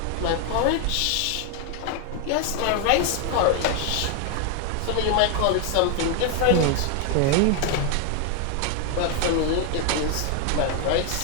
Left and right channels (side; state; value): both; different; correlation 0.01